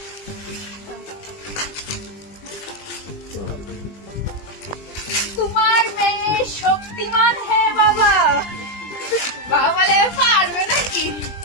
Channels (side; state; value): right; late; 20 ms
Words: তোমার মেয়ে শক্তিমান। হ্যাঁ বাবা, বাবা বলে পারবে নাকি?